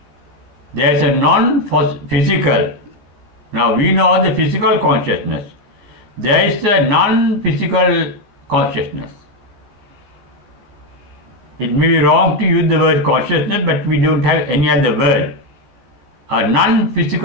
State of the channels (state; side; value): late; left; 15 ms